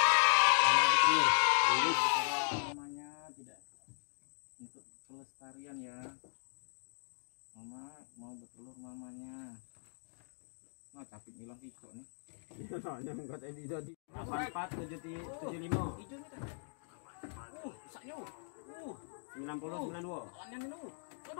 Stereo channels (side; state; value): right; silent; digital silence